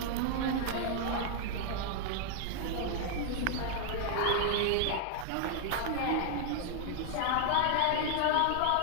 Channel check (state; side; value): different; both; correlation 0.00